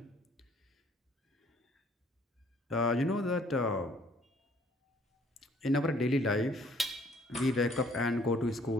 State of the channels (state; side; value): normal; both; correlation 0.60